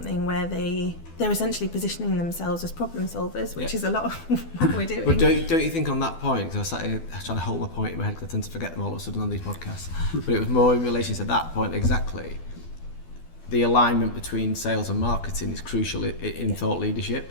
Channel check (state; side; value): late; right; 12 ms